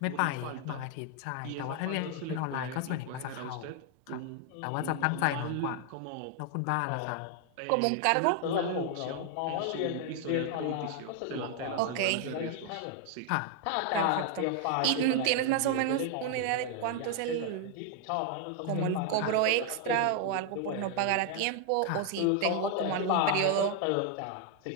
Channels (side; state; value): both; different; correlation 0.00